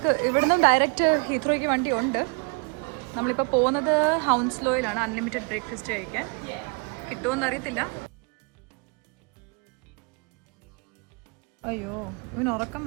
ഇവിടുന്ന് ഡയറക്റ്റ് ഹീത്രോയ്ക്ക് വണ്ടി ഉണ്ട്. നമ്മളിപ്പോൾ പോകുന്നത് ഹൗൺസ്ലോയിലാണ് അൺലിമിറ്റഡ് ബ്രേക്ക്ഫാസ്റ്റ് കഴിക്കാൻ. കിട്ടുമോയെന്ന് അറിയത്തില്ല. അയ്യോ, ഇവന് ഉറക്കം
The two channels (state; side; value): quieter; left; 33.3 dB